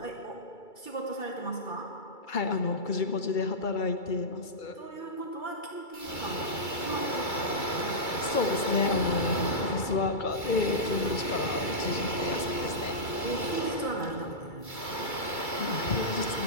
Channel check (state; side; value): late; right; 2.3 ms